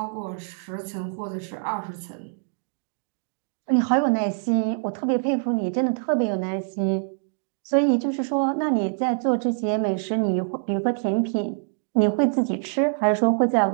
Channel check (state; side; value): silent; left; digital silence